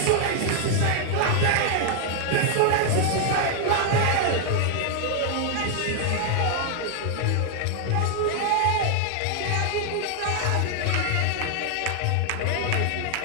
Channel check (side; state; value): both; different; correlation 0.00